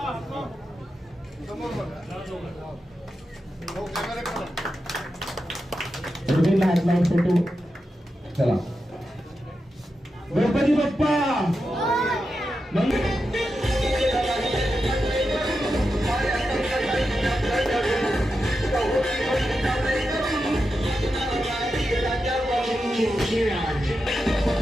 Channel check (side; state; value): both; normal; correlation 0.89